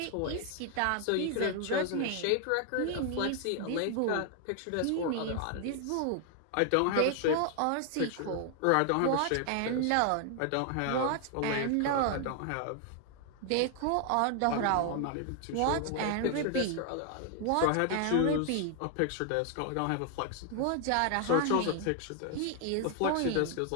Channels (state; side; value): different; both; correlation 0.00